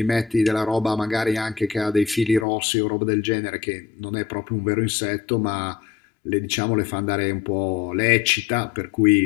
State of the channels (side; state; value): right; drops out; at 2.5 s